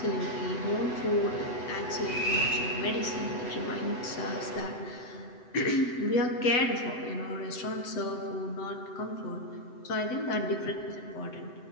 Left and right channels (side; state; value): right; late; 7.9 ms